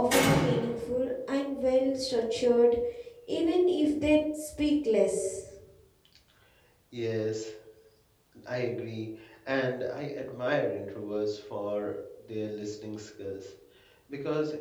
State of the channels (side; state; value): both; identical; correlation 1.00